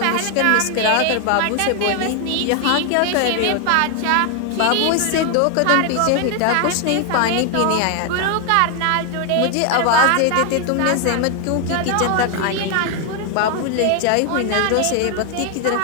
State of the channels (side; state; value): both; different; correlation 0.00